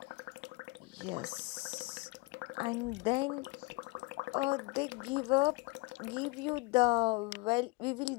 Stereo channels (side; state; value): right; quieter; 26.1 dB